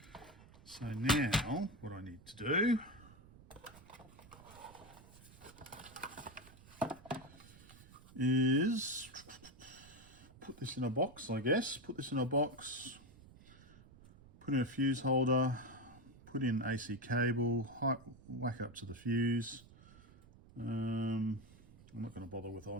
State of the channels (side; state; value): right; noise; rumble, 21 dB below the sound